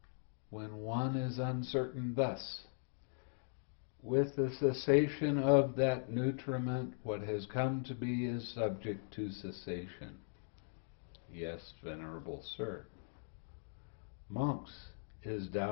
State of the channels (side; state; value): right; silent; digital silence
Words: when one is uncertain thus? With the cessation of that nutriment, what has come to be is subject to cessation. Yes, Venerable Sir. Monks, is